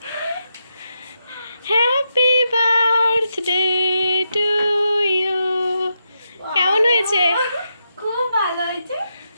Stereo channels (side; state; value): both; inverted; correlation -0.84